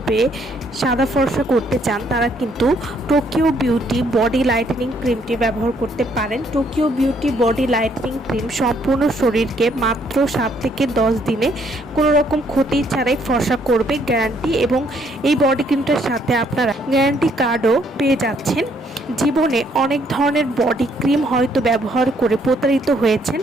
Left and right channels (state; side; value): normal; both; correlation 0.68